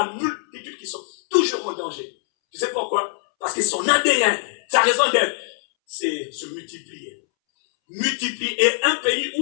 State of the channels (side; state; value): right; silent; 64 dB below the other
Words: multitude qui sont toujours en danger. que son ADN, sa raison d'être, c'est se multiplier. Multiplier. Et un pays